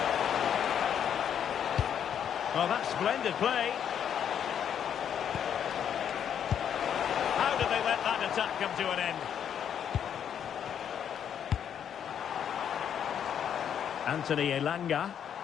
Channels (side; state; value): right; quieter; 8.8 dB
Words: Well, that's splendid play. How did they let that attack come to an end? Anthony Elanga.